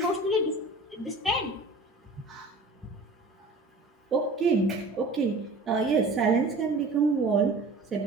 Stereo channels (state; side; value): quieter; left; 3.2 dB